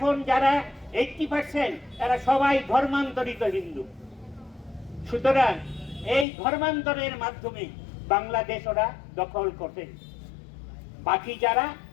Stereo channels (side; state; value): right; drops out; at 6.2 s